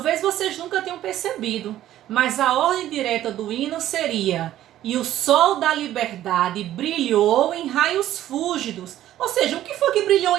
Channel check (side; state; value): left; quieter; 13.0 dB